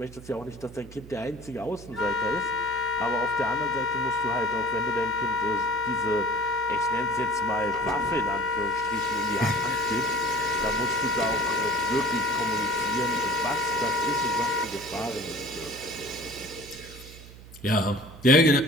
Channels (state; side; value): noise; right; hum, 17 dB below the sound